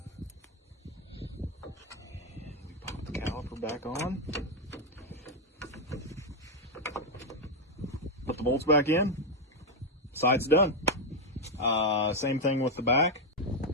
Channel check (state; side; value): normal; both; correlation 0.03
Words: we pop the caliper back on, put the bolts back in, side's done. Same thing with the back.